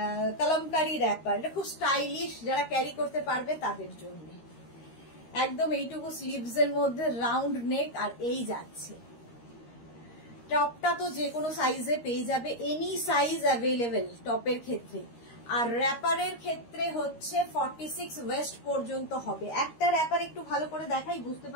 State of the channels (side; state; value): right; late; 13 ms